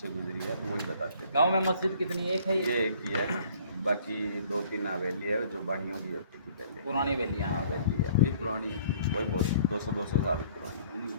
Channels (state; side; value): inverted; both; correlation -0.56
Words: गुजरी है, तो वही बताते हैं। गांव में मस्जिद कितनी? एक है ये एक ही है, बाकी 2-3 हवेली है जो बानियों की होती थी पहले, पुरानी हवेलियाँ। हाँ हवेली है, वही पुरानी है, वही बहुत 200 साल पुरानी